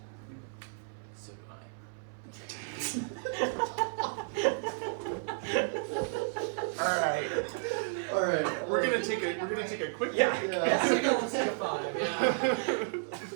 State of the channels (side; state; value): left; silent; 56 dB below the other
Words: So do I. All right. We're gonna take a quick Yeah. break. Let's take a 5, yeah.